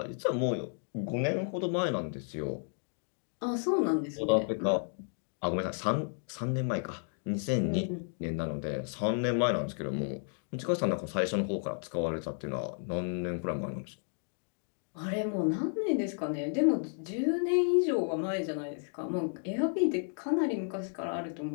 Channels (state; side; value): silent; right; 56 dB below the other